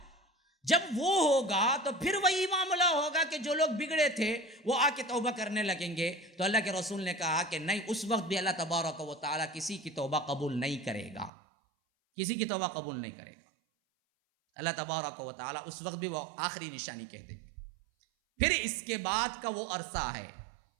جب وہ ہوگا تو پھر وہی معاملہ ہوگا کہ جو لوگ بگڑے تھے وہ آ کے توبہ کرنے لگیں گے. تو اللہ کے رسول نے کہا کہ نہیں، اس وقت بھی اللہ تبارک و تعالیٰ کسی کی توبہ قبول نہیں کرے گا، کسی کی توبہ قبول نہیں کرے گا. اللہ تبارک و تعالیٰ اس وقت بھی وہ آخری نشانی کہہ دیں گے. پھر اس کے بعد کا وہ عرصہ ہے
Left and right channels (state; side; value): drops out; left; at 11.3 s